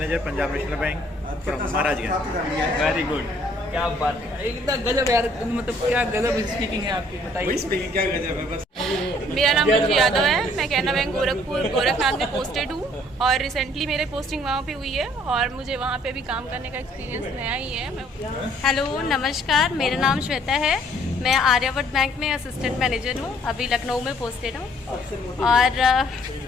Punjab National Bank from Maharajganj. Very good, क्या बात है, एकदम गजब यार, मतलब क्या गजब स्पीकिंग है आपकी, बताइए। स्पीकिंग क्या गजब है बस। मेरा नाम रुचि यादव है, मैं कैनरा बैंक गोरखपुर गोरखनाथ में पोस्टेड हूँ और रिसेंटली मेरे पोस्टिंग वहाँ पे हुई है और मुझे वहाँ पे भी काम करने का एक्सपीरियंस नया ही है। हेलो, नमस्कार, मेरा नाम श्वेता है, मैं आर्यावर्त बैंक में असिस्टेंट मैनेजर हूँ, अभी लखनऊ में पोस्टेड हूँ। और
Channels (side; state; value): both; normal; correlation 0.61